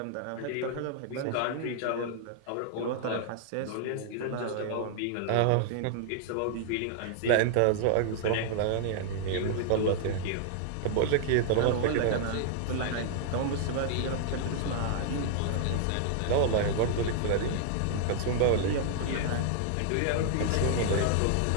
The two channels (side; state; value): both; different; correlation -0.01